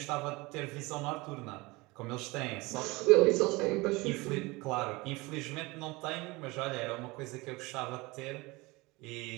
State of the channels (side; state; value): left; quieter; 23.4 dB